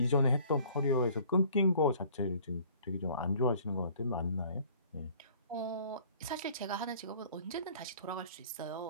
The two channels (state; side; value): inverted; both; correlation -0.54